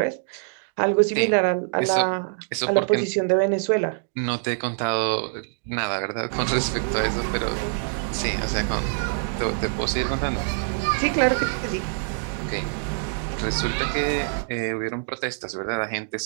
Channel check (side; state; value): left; silent; digital silence